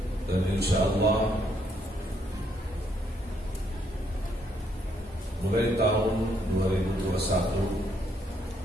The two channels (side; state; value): both; normal; correlation 0.72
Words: Dan insyaallah mulai tahun 2021